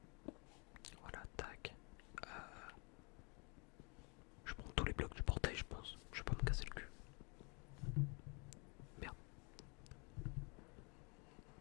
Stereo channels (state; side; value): quieter; right; 32.4 dB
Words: Voilà, tac. Je prends tous les blocs du portail, je pense. Je vais pas me casser le cul. Merde.